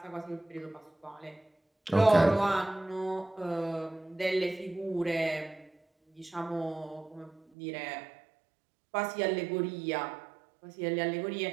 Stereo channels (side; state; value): left; drops out; at 7.5 s